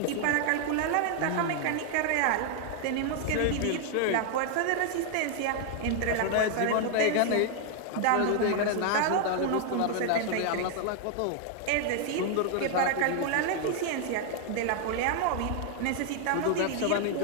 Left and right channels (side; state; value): both; different; correlation 0.00